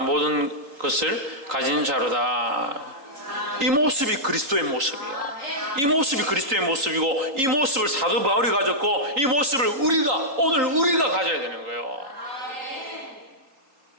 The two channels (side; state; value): left; late; 3.8 ms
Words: 것을 가진 자로다. 이 모습이 그리스도의 모습이에요. 이 모습이 그리스도의 모습이고 이 모습을 사도 바울이 가졌고 이 모습을 오늘 우리가 가져야 되는 거예요.